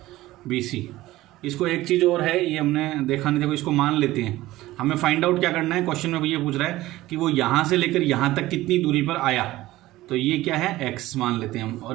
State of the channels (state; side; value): quieter; left; 16.9 dB